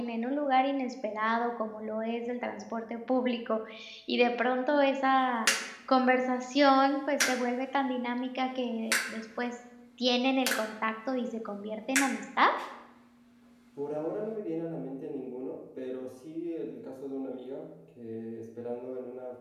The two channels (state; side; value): identical; both; correlation 1.00